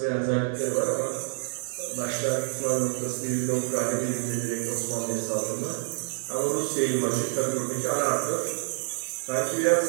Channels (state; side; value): silent; left; 60 dB below the other